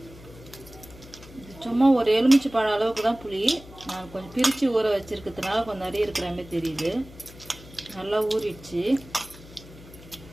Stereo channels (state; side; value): noise; left; hum, 19 dB below the sound